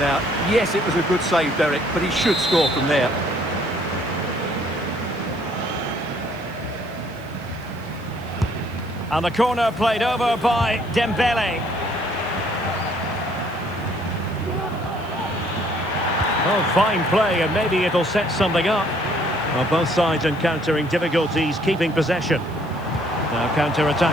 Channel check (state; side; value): noise; left; hiss, 27 dB below the sound